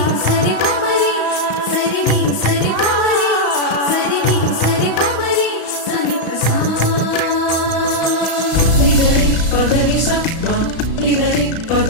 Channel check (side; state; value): right; late; 35 ms